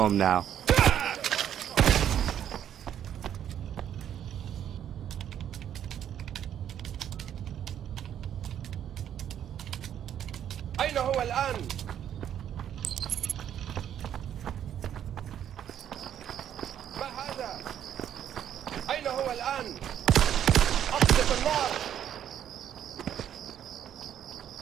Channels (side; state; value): left; quieter; 10.0 dB